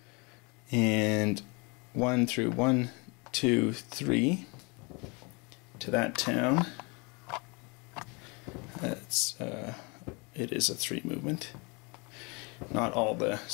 and 1 through 1, 2, 3 to that town. That's it is a 3 movement. Not all the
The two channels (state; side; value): quieter; right; 29.9 dB